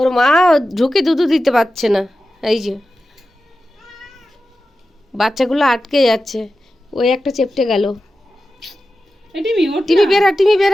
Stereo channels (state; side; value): normal; both; correlation 0.93